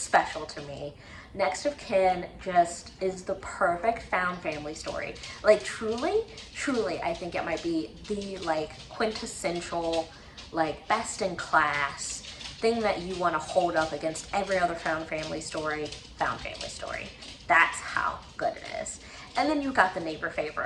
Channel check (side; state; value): both; identical; correlation 1.00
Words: to me. Next of Kin just is the perfect found family story. Like truly, I think it might be the quintessential, best in class thing that you want to hold up against every other found family story. That's how good it is. And then you got The Neighbor